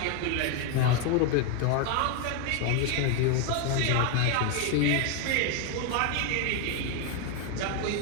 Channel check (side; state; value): both; different; correlation 0.01